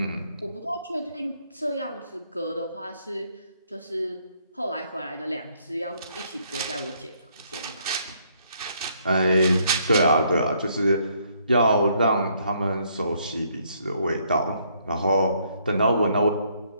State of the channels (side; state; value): both; inverted; correlation -0.69